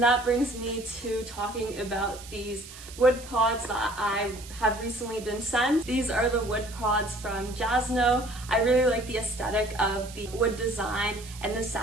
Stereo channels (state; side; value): noise; right; hiss, 16 dB below the sound